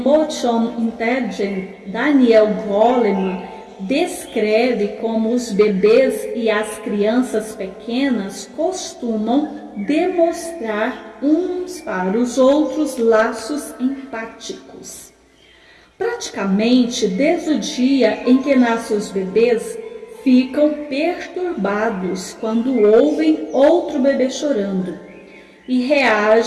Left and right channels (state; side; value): identical; both; correlation 1.00